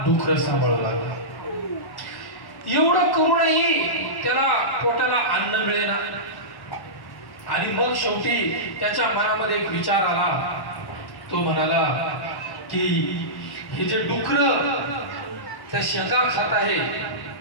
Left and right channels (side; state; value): right; late; 1.1 ms